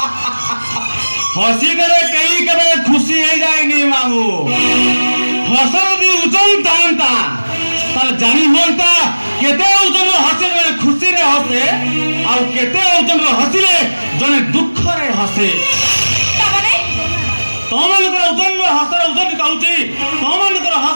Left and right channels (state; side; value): inverted; both; correlation -1.00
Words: हसी करे कई करे खुशी हो जाएगी मामू हसर भी उजन तांता तार जानी होता केते उजन हसे जने खुशी रे हसे आ केते उजन हसी रे जने दुख रे हसे तमनकर उजन में हसर उजन कहउची तमनकर